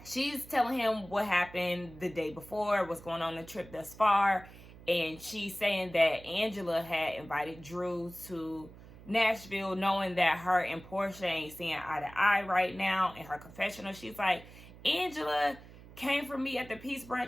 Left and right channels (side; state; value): right; noise; hum, 19 dB below the sound